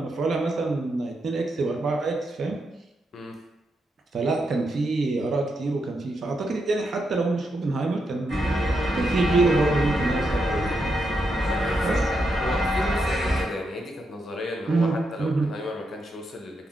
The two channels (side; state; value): both; normal; correlation 0.83